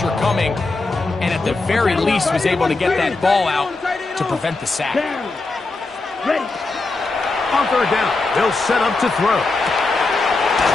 coming, and at the very least was able to get that ball out to prevent the sack. Down. Ready. On 3rd down, they'll set up to throw.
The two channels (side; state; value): right; quieter; 3.5 dB